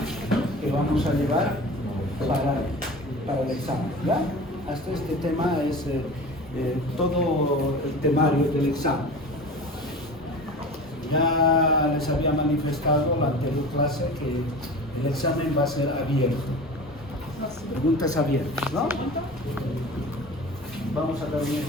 que vamos a llevar para el examen, ¿ya? Hasta este tema es todo el temario del examen. Ya les había manifestado en la anterior clase que el examen va a ser abierto. Preguntas abiertas, ¿no? Vamos a dar un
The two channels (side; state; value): both; normal; correlation 0.35